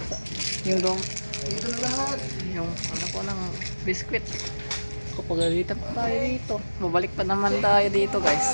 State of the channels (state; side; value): inverted; both; correlation -1.00